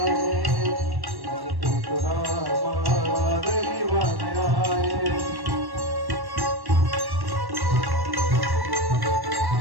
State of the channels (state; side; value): late; left; 1.1 ms